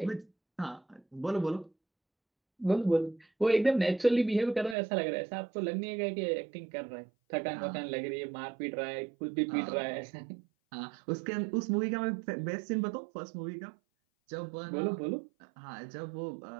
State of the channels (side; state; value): left; drops out; at 4.8 s